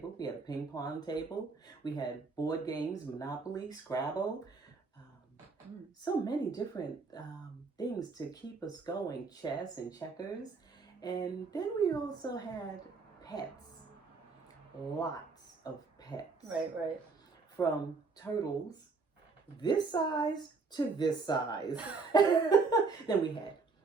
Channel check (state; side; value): quieter; left; 4.4 dB